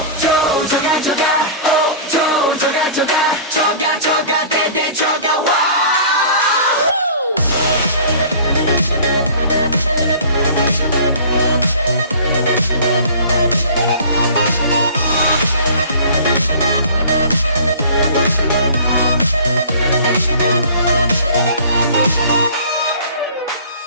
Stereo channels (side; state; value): both; inverted; correlation -0.44